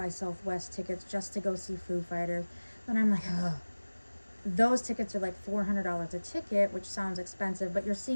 Southwest tickets just to go see Foo Fighters. But I'm like, ugh. Those tickets are like $400 a ticket, which sounds expensive, but you're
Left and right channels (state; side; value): inverted; both; correlation -1.00